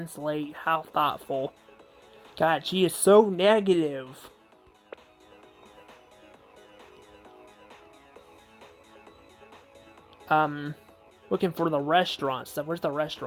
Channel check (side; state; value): both; identical; correlation 1.00